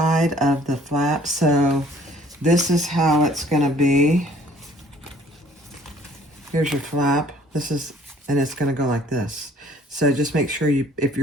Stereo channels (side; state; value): both; normal; correlation 0.57